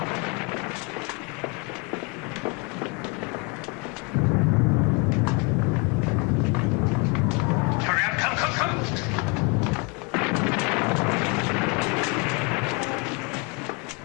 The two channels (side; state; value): right; quieter; 29.9 dB